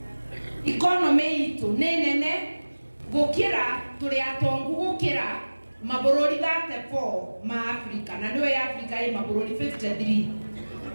economy itu ni nene gukira turi atongu gukira mabururi 34 ma Africa na niwe Africa ye mabururi 53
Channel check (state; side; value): inverted; both; correlation -1.00